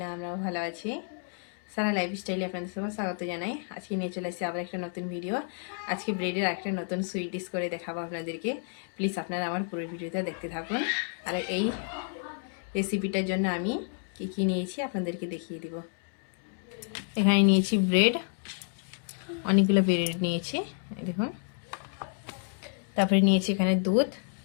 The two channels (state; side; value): silent; right; 56 dB below the other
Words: আমরাও ভালো আছি। সারা লাইফস্টাইলে আপনাদের সবাই স্বাগত জানাই। আজকে নিয়ে চলে এসেছি আবার একটা নতুন ভিডিও। আজকে ব্রেডের একটা নতুন সুইট ডিশ করে দেখাবো আপনাদেরকে। প্লিজ আপনারা আমার পুরো ভিডিওটা দেখতে থাকুন। আর এই রেসিপিটার জন্য আমি কী নিয়েছি আপনাদেরকে দেখিয়ে দিব। এখানে নিয়েছি ব্রেড, অনেকগুলো ব্রেড নিয়েছি, দেখুন। তারপরে নিয়েছি এখানে দুধ,